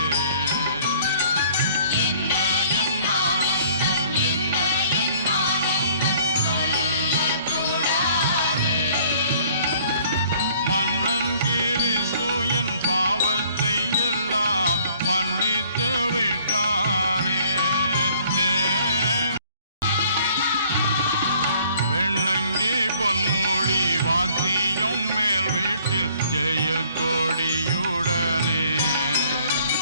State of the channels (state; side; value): inverted; both; correlation -0.58